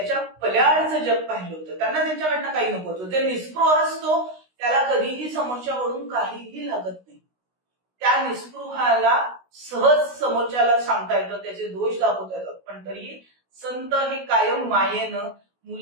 पल्याडचं जग पाहिलं होतं, त्यांना त्यांच्याकडनं काही नको होतं. ते निस्पृह असतो, त्याला कधीही समोरच्याकडून काहीही लागत नाही. त्या निस्पृहाला सहज समोरच्याला सांगता येतं, त्याचे दोष दाखवता येतात. पण तरीही संत हे कायम मायेनं,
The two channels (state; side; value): late; left; 16 ms